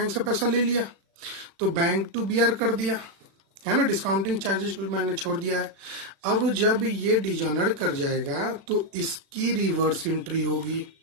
से पैसा ले लिया, तो बैंक टू BR कर दिया, है ना। डिस्काउंटिंग चार्जेस भी मैंने छोड़ दिया है। अब जब ये डिसऑनर कर जाएगा तो इसकी रिवर्स एंट्री होगी।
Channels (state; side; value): late; left; 36 ms